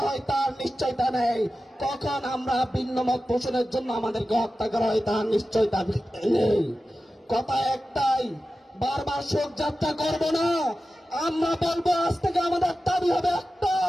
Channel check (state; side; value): normal; both; correlation 0.94